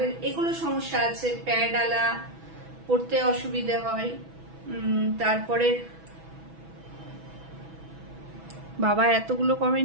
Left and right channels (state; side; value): late; left; 6.1 ms